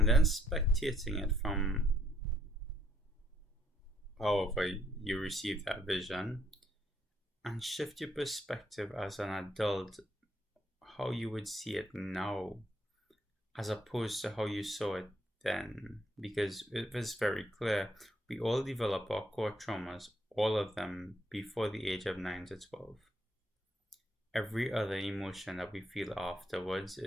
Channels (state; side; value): normal; both; correlation 0.69